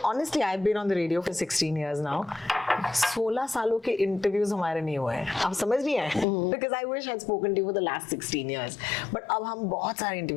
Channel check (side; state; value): right; drops out; at 6.2 s